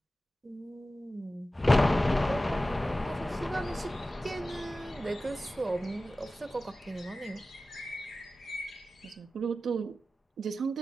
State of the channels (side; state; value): both; normal; correlation 0.95